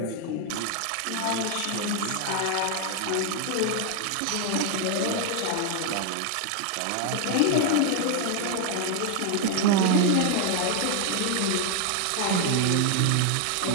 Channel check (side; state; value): both; different; correlation 0.00